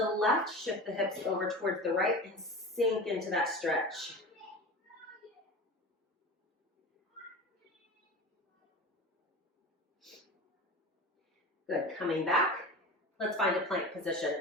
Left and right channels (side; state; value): both; normal; correlation 0.31